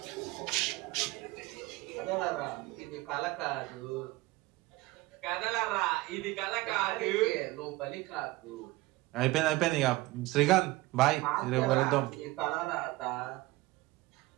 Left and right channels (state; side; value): quieter; left; 20.0 dB